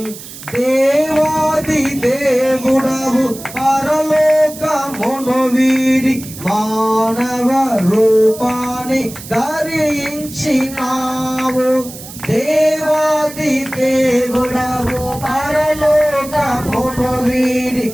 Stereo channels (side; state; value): right; noise; hiss, 14 dB below the sound